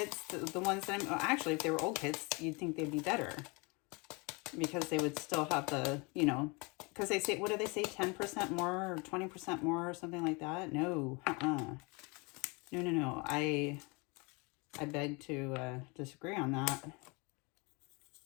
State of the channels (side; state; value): right; quieter; 28.8 dB